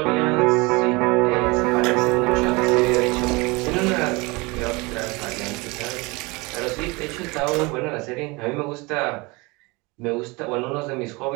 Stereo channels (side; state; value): left; quieter; 25.8 dB